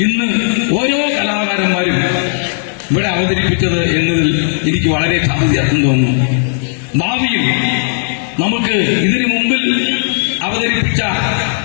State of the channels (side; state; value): right; silent; digital silence